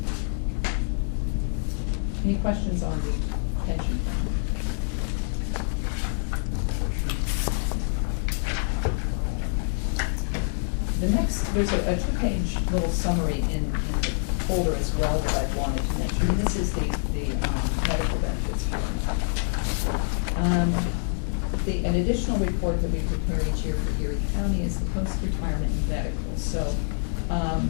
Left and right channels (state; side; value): silent; right; digital silence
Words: Any questions on the pension plan? The next, there's a two-page little summary in the folder as well that I wanted to mention. And this is the medical benefits form. An additional report that we prepare each year for Erie County is the post-retirement medical. So